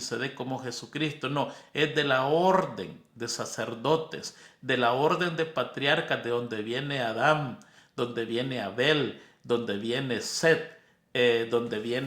como Jesucristo. No, es de la orden de sacerdotes, de la orden de patriarcas, de donde viene Adán, donde viene Abel, donde viene Set, donde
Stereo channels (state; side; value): identical; both; correlation 1.00